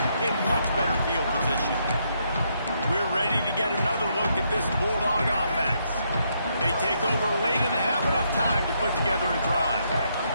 in much better field position. We're ready to get another look at this Bulldog offense. They take over late in the half, enough time to put together a drive.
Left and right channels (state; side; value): inverted; both; correlation -0.76